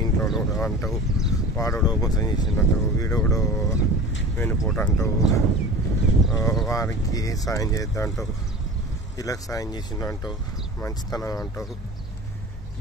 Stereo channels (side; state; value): both; normal; correlation 0.38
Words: ఇంట్లో అంటావు, వాడోడో మోసం చేసిందంటావు, వీడోడో వెనుపోట అంటావు, వారికి సాయం చేద్దాం అంటావు, వీళ్ళకి సాయం చేసిందంటావు, మంచితనం అంటావు.